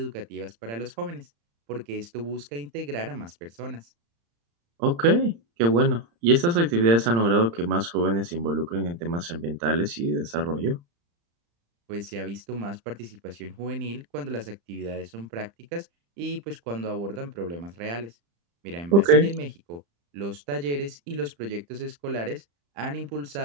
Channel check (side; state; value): left; late; 35 ms